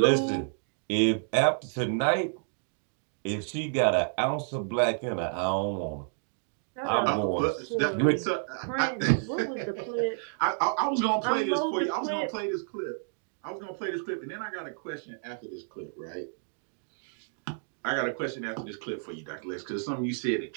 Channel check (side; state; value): left; silent; digital silence